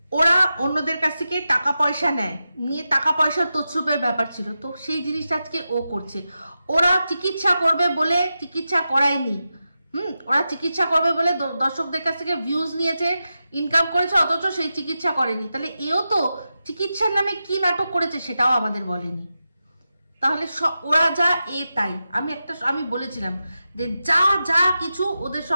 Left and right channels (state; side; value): inverted; both; correlation -0.91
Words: ওরা অন্যদের কাছ থেকে টাকা পয়সা নেয়, নিয়ে টাকা পয়সার তছরূপের ব্যাপার ছিল, তো সেই জিনিসটা আজকে ও করছে। ওরা চিকিৎসা করবে বলে চিকিৎসা করায়নি, ওরা চিকিৎসা করবে বলে দর্শকদের কাছ থেকে ভিউজ নিয়েছে, ইনকাম করেছে, অথচ সেই চিকিৎসা করেনি। তাহলে এও তো চিকিৎসার নামে কি নাটক করেছে সেটাও আমাদের বলেনি। তাহলে ওরা যা তাই। আমি বলেছিলাম যে যা কিছু ওদের